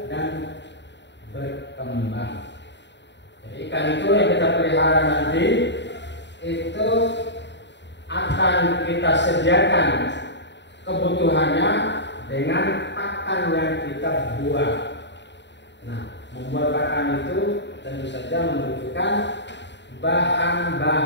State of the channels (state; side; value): late; right; 0.52 ms